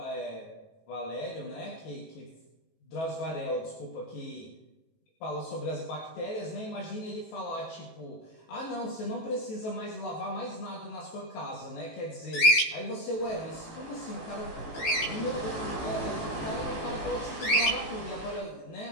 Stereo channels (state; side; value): late; right; 18 ms